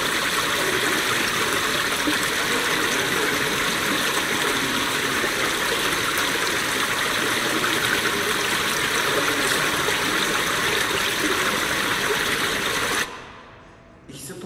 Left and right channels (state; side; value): identical; both; correlation 1.00